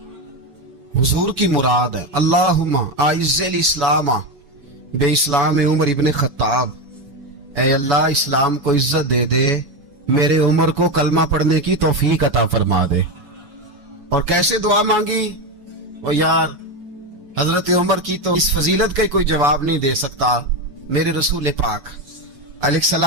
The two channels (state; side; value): late; left; 7.0 ms